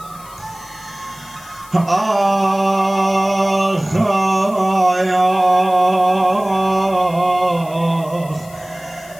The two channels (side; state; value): left; noise; hiss, 22 dB below the sound